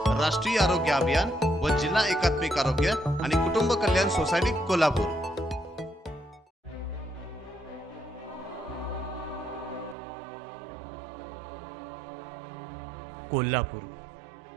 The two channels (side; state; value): left; drops out; at 10.0 s